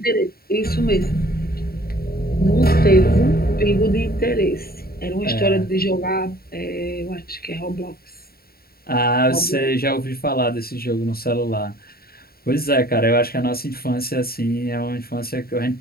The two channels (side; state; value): right; late; 0.44 ms